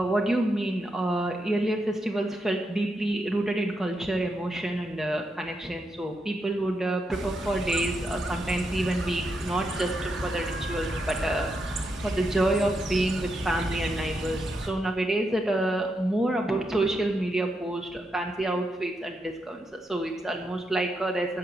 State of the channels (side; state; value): both; normal; correlation 0.83